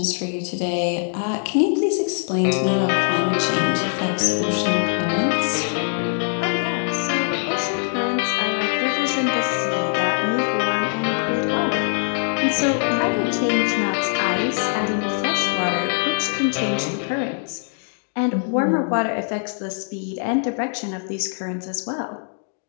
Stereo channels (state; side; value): silent; right; digital silence